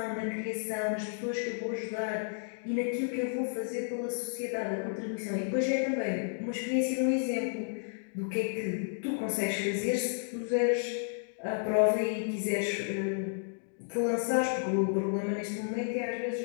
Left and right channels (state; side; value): silent; right; digital silence